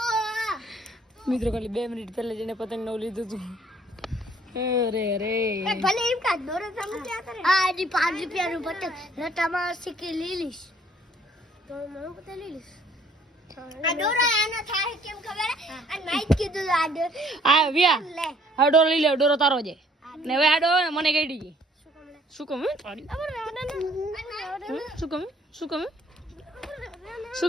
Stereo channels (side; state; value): both; normal; correlation 0.61